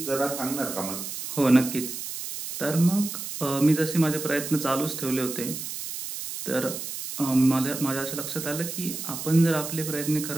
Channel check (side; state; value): right; noise; hiss, 7 dB below the sound